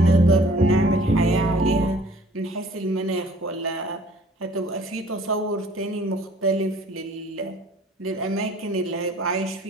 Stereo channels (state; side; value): normal; both; correlation 0.54